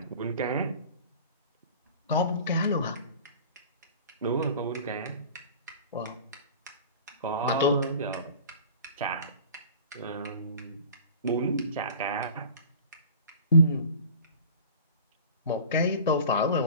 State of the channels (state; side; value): inverted; both; correlation -0.41